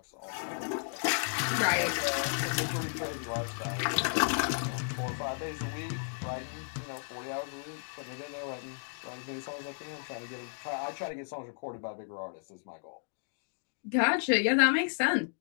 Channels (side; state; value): right; silent; digital silence